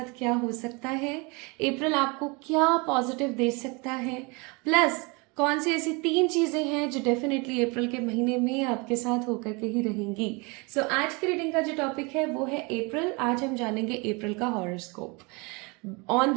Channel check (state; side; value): quieter; left; 28.9 dB